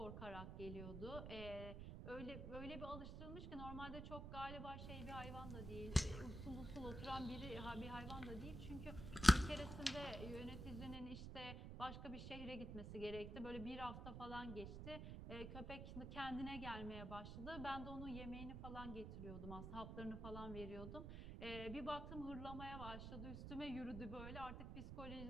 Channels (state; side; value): noise; right; rumble, 6 dB below the sound